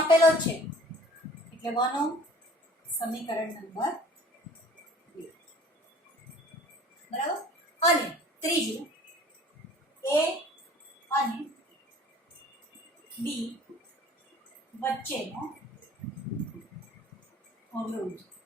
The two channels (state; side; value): normal; both; correlation 0.49